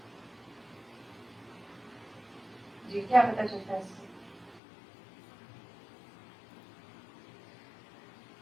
جی کیا پتا چلتا ہے اس سے؟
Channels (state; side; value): drops out; right; at 4.6 s